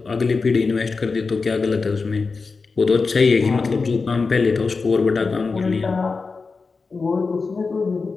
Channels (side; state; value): right; quieter; 4.4 dB